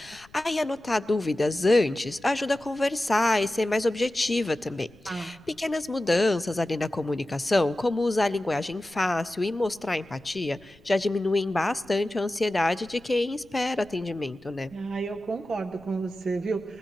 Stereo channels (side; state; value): left; noise; rumble, 27 dB below the sound